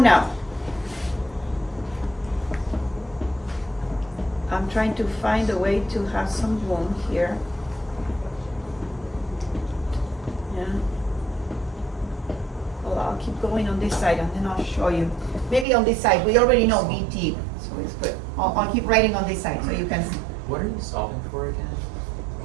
I'm trying to find a way to have some room here. Yeah. Well, I'll keep going on this side and then I'll show you. Maybe on this side, we already know VT, So it's good. I'll keep writing on this side so you can see. What are you solving for again?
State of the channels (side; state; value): left; drops out; at 15.7 s